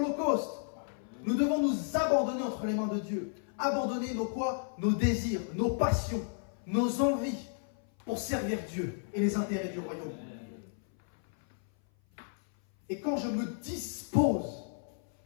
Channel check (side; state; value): right; silent; 56 dB below the other